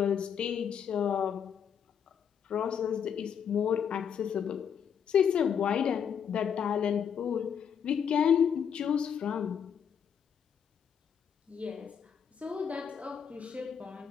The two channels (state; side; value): quieter; right; 7.8 dB